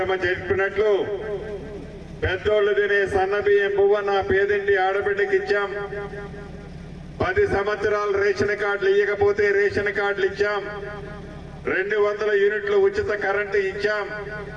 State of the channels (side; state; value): both; identical; correlation 1.00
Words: చెప్పినట్లు పెద్దోళ్ళు తినే సన్నబియ్యం పువ్వ నా పేదింటి ఆడబిడ్డకి ఇచ్చాం. 10 సంవత్సరాలు రేషన్ కార్డులు ఇవ్వకపోతే రేషన్ కార్డులు ఇచ్చాం. 200 యూనిట్లు ఉచిత కరెంటు ఇచ్చాం.